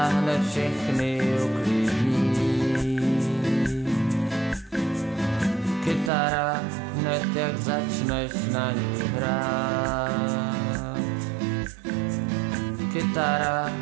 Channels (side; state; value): left; drops out; at 6.1 s